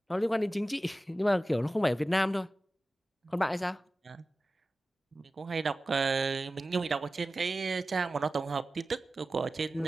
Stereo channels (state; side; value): normal; both; correlation 0.95